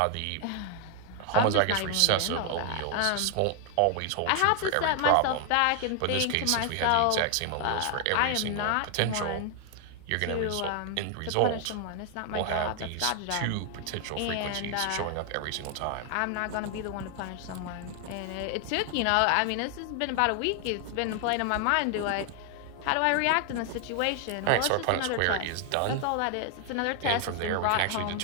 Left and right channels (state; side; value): different; both; correlation 0.00